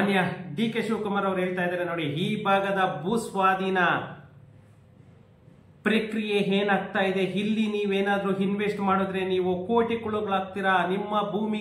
DK ಶಿವಕುಮಾರ್ ಅವರು ಹೇಳ್ತಾ ಇದ್ದಾರೆ ನೋಡಿ, ಈ ಭಾಗದ ಭೂಸ್ವಾಧೀನ ಪ್ರಕ್ರಿಯೆ ಏನಾಗ್ತಾ ಇದೆ, ಇಲ್ಲಿ ನೀವೇನಾದ್ರೂ ಇನ್ವೆಸ್ಟ್ ಮಾಡಿದ್ರೆ ನೀವು ಕೋಟಿಗಳಾಗ್ತೀರಾ, ನಿಮ್ಮ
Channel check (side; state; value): both; identical; correlation 1.00